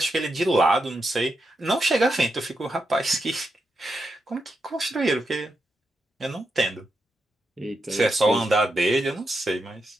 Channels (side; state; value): both; normal; correlation 0.85